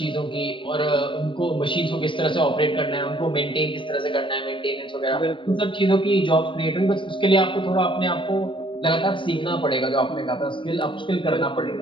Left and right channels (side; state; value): right; late; 0.24 ms